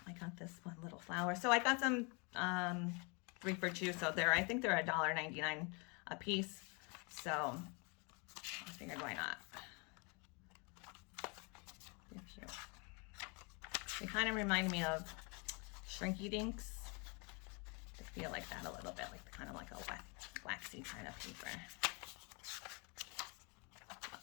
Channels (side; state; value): right; quieter; 32.1 dB